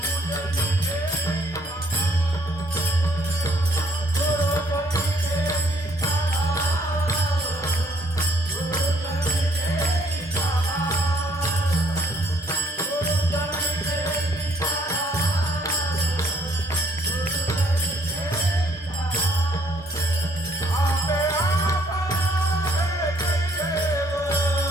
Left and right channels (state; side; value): normal; both; correlation 0.65